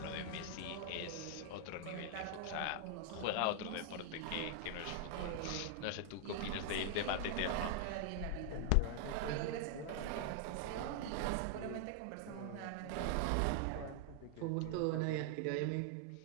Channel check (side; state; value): both; different; correlation 0.00